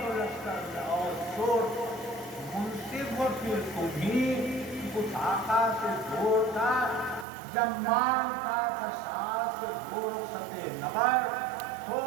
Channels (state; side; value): drops out; left; at 7.2 s